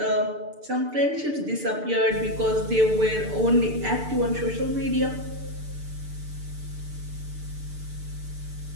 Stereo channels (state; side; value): late; left; 6.8 ms